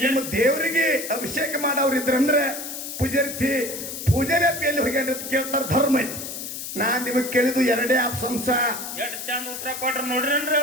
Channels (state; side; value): noise; left; hiss, 7 dB below the sound